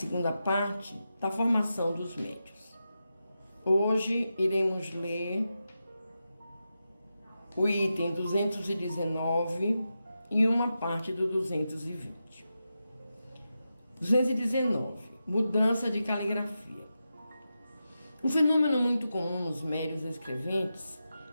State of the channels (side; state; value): both; inverted; correlation -0.90